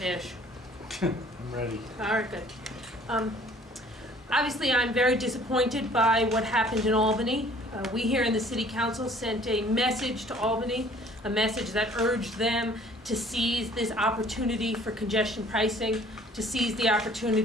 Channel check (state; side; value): normal; both; correlation 0.54